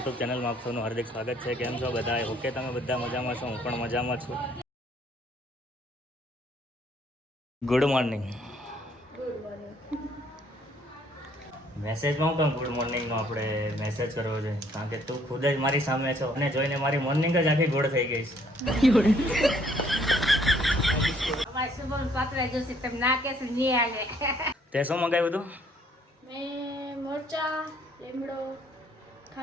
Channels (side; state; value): both; normal; correlation 0.64